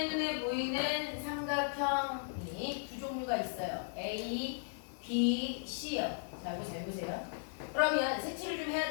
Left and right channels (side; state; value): right; silent; digital silence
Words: 눈에 보이는 삼각형이 두 종류가 있어요. A, B, C요. 자, 이거 잘 보세요. 그러면 색칠을 좀 해야